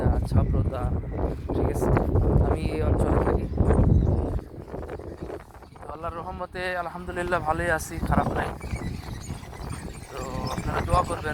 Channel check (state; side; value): identical; both; correlation 1.00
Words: ছাব্রতা, ঠিক আছে। আমি এই অঞ্চলে থাকি, তো আল্লাহর রহমতে আলহামদুলিল্লাহ ভালোই আছি, খারাপ নাই। তো আপনারা দোয়া